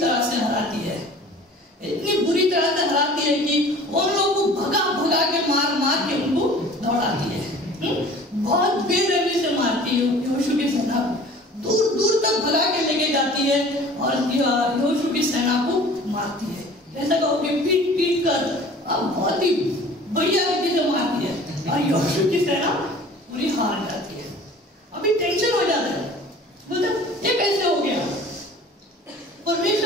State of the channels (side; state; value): both; normal; correlation 0.46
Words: से हराती है, इतनी बुरी तरह से हराती है कि उन लोगों को भगा के मार के उनको दौड़ाती है, बहुत बेरहमी से मारती है यहोशू की सेना को, दूर तक भगा के लेके जाती है और यहोशू की सेना को मारती है। ऐसा कहो कि पीट कर बहुत ही बढ़िया रीति से मारती है और यहोशू की सेना पूरी हार जाती है। अभी टेंशन हो जाता है, बोलते ये कैसे हो गया,